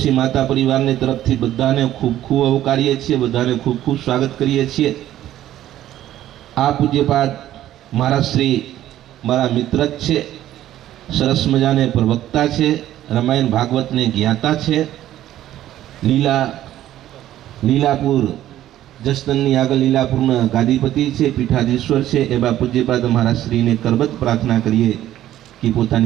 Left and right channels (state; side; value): quieter; left; 13.0 dB